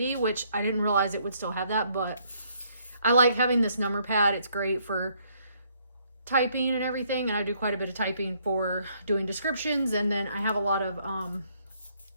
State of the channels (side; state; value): both; inverted; correlation -0.68